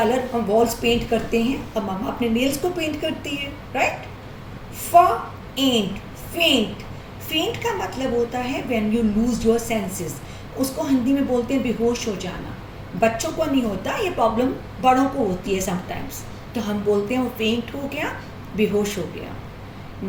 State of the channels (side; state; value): both; identical; correlation 1.00